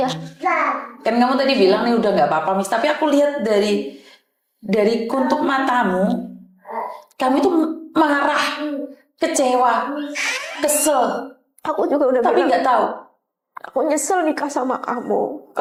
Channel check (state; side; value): identical; both; correlation 1.00